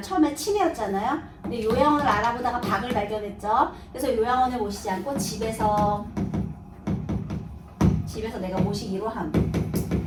처음에 치매였잖아요. 근데 요양원을 알아보다가 박을 발견했죠. 그래서 요양원에 모시지 않고 집에서 내가 모시기로 함.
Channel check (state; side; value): identical; both; correlation 1.00